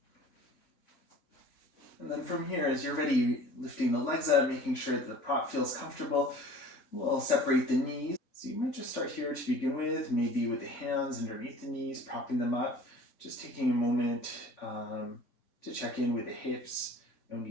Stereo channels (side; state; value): right; late; 3.6 ms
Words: And then from here, as you're ready, lifting the legs up, making sure that the prop feels comfortable, we'll separate the knees. So you might just start here to begin with, maybe with the hands underneath the knees, propping them up, just taking a moment to check in with the hips, no